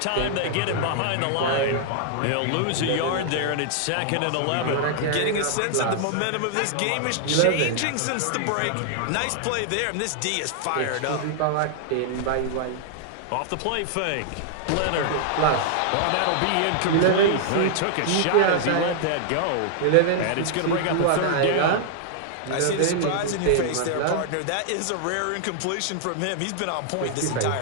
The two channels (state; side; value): different; both; correlation -0.01